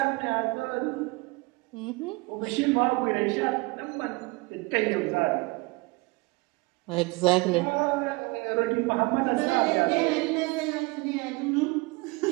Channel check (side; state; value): left; quieter; 25.0 dB